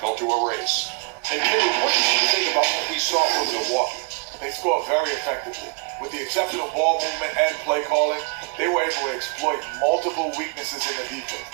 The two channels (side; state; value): left; quieter; 32.1 dB